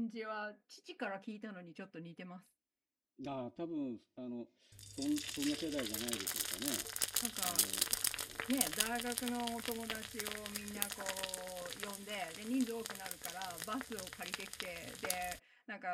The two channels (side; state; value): both; identical; correlation 1.00